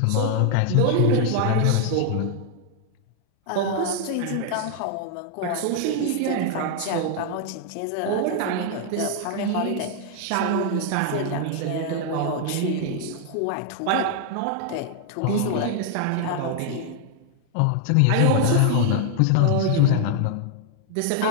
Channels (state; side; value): different; both; correlation 0.00